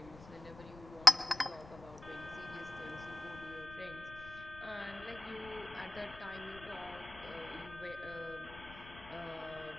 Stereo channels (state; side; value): noise; left; rumble, 17 dB below the sound